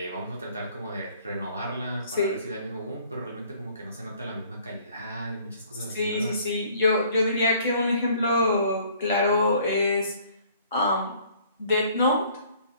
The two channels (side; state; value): both; inverted; correlation -0.58